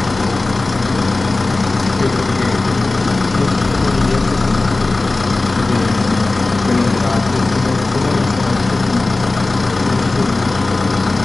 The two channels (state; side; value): quieter; right; 3.2 dB